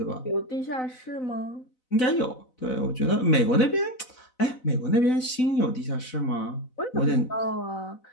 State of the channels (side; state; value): right; late; 4.0 ms